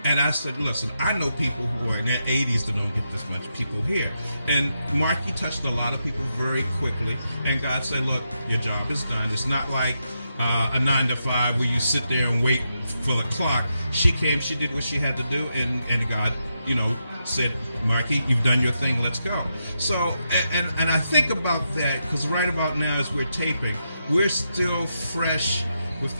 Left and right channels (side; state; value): both; inverted; correlation -0.84